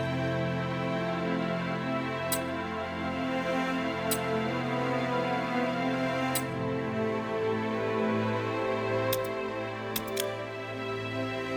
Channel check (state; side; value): identical; both; correlation 1.00